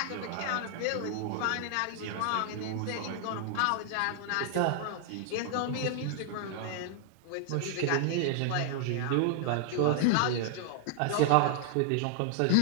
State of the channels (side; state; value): both; different; correlation 0.00